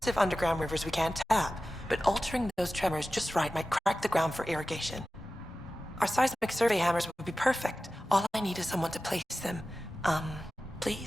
underground rivers we can't tap, but altering those tremors just right might crack the ground for irrigation. Our seismic survey hammers would be perfect. All I need is someone to place them.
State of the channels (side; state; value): both; normal; correlation 0.95